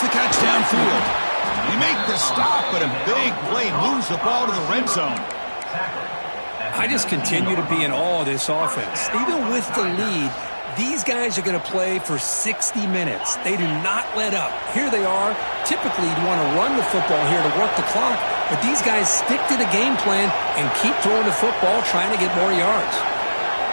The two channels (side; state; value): both; inverted; correlation -1.00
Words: catch downfield. They make the stop, but a big play moves the ball to the red zone. I just continue to be in awe of this offense. Even with the lead, these guys are going to play for 60 minutes. They do not let up. Here they are. Typically, you want to run the football here to work the clock, but these guys stick to the game plan and keep throwing the football, trying to get more yards.